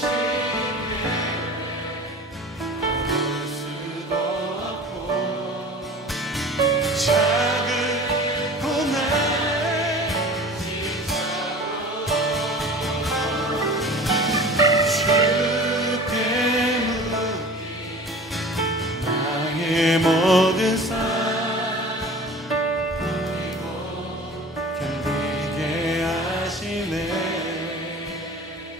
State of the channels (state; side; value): normal; both; correlation 0.40